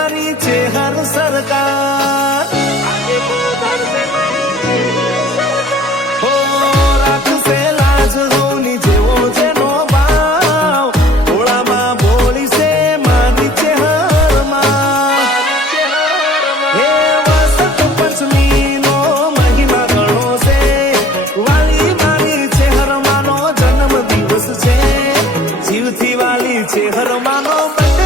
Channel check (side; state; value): both; normal; correlation 0.52